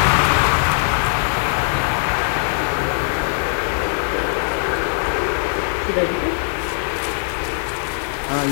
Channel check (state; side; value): silent; right; digital silence